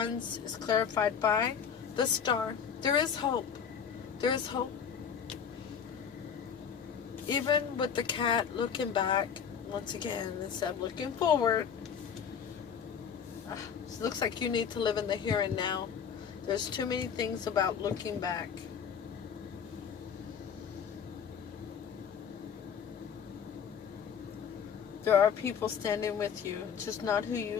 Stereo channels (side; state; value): right; quieter; 7.4 dB